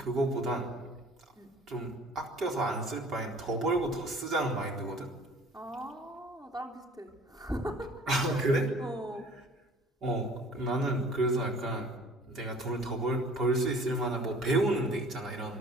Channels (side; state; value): both; normal; correlation 0.49